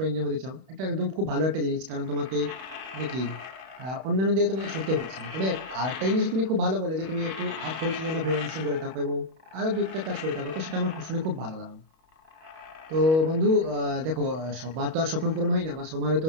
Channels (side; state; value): left; late; 31 ms